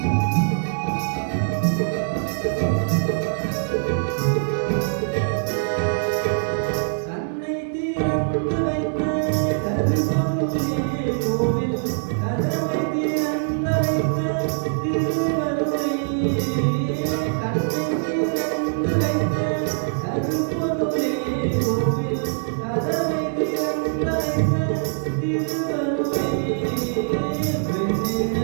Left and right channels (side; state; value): left; silent; digital silence